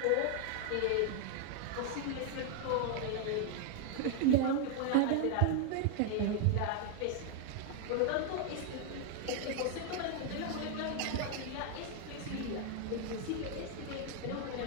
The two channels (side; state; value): both; different; correlation 0.00